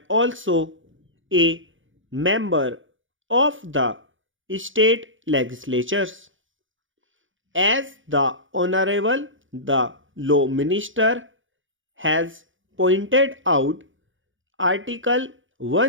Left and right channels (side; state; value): left; late; 0.57 ms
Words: also a member of the state legislatures. As the Honorable the Law Minister has pointed out, Article